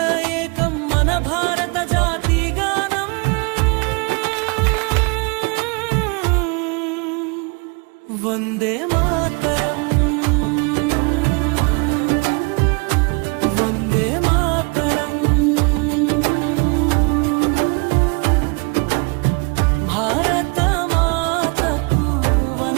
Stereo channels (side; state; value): left; quieter; 31.6 dB